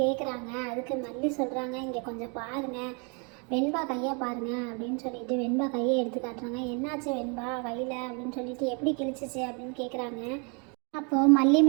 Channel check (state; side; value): quieter; left; 34.8 dB